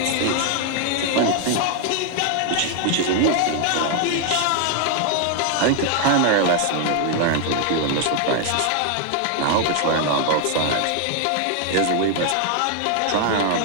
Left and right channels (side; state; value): both; different; correlation 0.00